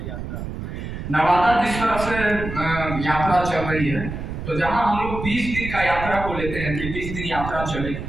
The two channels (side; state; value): right; noise; rumble, 7 dB below the sound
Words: नवादा जिस तरह से यात्रा चल रही है, तो जहाँ हम लोग 20 दिन का यात्रा को लेते हैं कि 20 दिन यात्रा चलेगी,